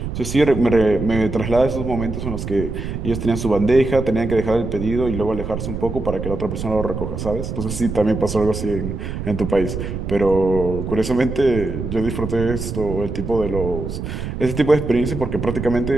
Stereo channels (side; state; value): right; noise; rumble, 6 dB below the sound